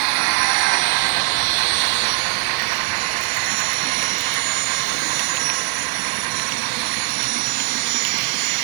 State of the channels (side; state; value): left; silent; digital silence